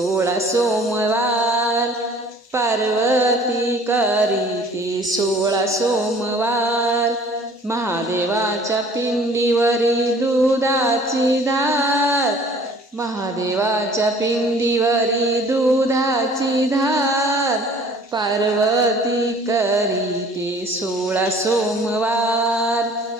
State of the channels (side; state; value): both; normal; correlation 0.52